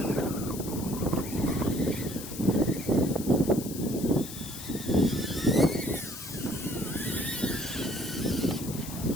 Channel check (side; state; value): left; noise; hiss, 11 dB below the sound